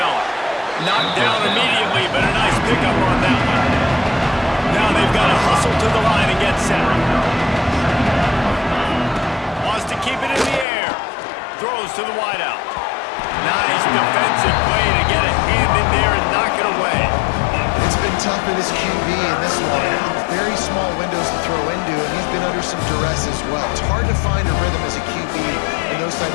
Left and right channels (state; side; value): drops out; right; at 10.7 s